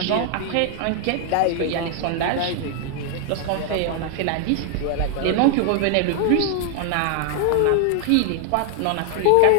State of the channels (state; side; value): different; both; correlation 0.00